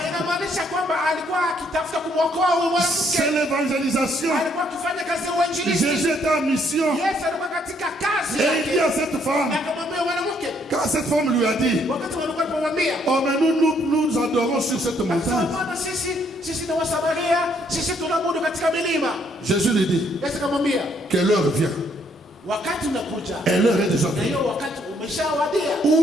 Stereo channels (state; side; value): normal; both; correlation 0.69